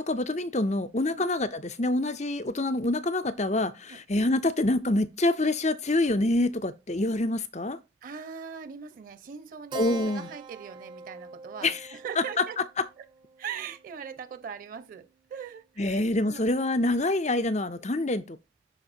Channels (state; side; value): normal; both; correlation 0.50